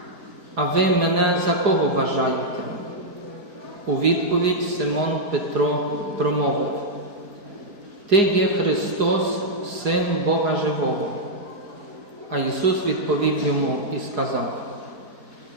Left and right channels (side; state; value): left; late; 4.8 ms